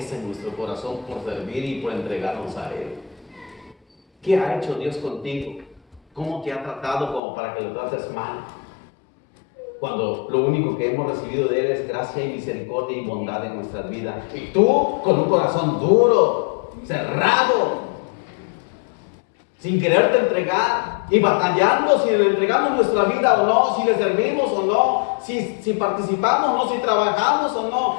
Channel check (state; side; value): drops out; right; at 7.2 s